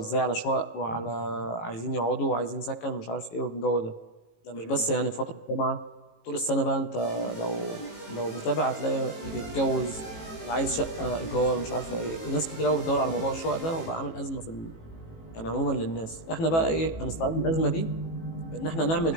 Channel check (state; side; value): late; right; 18 ms